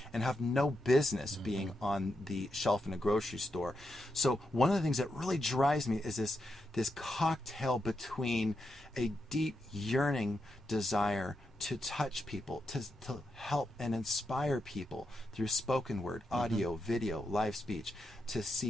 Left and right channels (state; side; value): normal; both; correlation 0.85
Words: and have no business being on the shelf in a grocery store. So one of the things that really drives me is this cocktail between a deep yearning desire to touch people, to help and inspire people through spoken word, audio, video, live speech, to